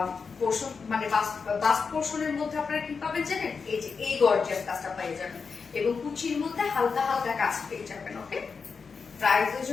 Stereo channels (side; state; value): right; quieter; 5.3 dB